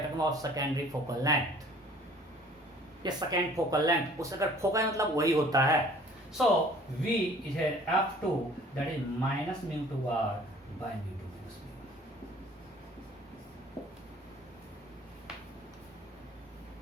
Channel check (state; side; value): normal; both; correlation 0.52